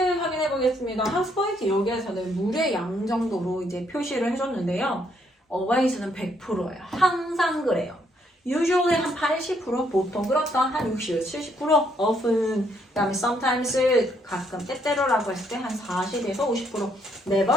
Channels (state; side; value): normal; both; correlation 0.72